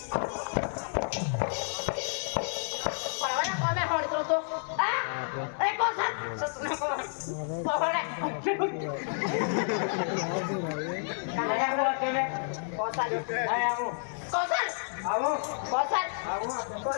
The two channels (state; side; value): silent; right; digital silence